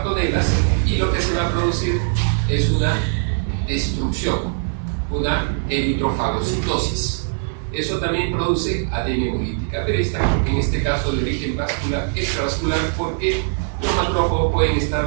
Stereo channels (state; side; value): silent; left; 65 dB below the other